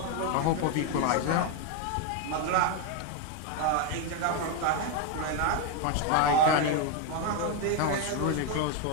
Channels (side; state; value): both; different; correlation 0.02